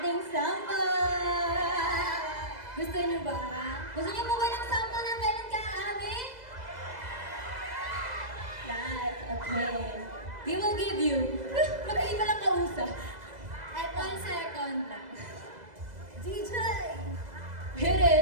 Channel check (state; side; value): late; left; 2.0 ms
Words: sample. Gusto niyo ba? Gusto niyo po ba ng sample ng kailan ka aamin? Yes, okay. We will give you. Magkaiba lang kausap. At 1 second lang. DJ! Hit